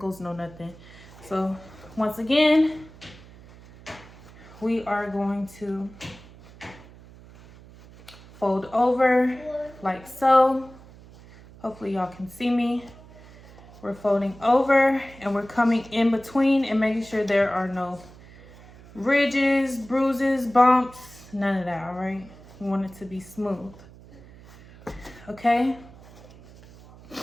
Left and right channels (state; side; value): noise; right; hum, 21 dB below the sound